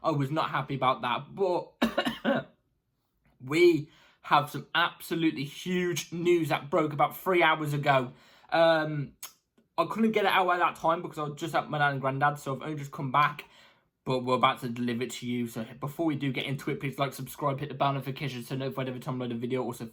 I was not happy about that. But we have some absolutely huge news that broke about 3 hours ago. I couldn't get it out at that time because I was just at my dad and granddad, so I've only just come back. But we're about to deliver it to you. So before we do get into it, please like, subscribe, hit the bell notification so notified every time I load a video. Also,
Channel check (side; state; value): both; identical; correlation 1.00